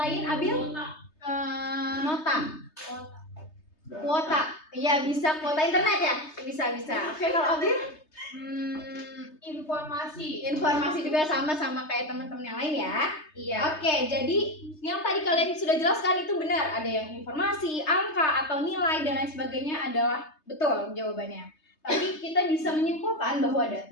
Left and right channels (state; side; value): late; right; 3.3 ms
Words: Abil? Nota. Kuota. Iya, bisa kuota internet ya? Bisa. Oke, kalau Abil? Informasi juga sama kayak teman-teman yang lain ya. Iya. Oke, jadi yang tadi kalian sudah jelaskan itu benar. Ada yang informasi, angka atau nilai dan lain sebagainya adalah betul jawabannya. Tapi kita bisa menyimpulkan bahwa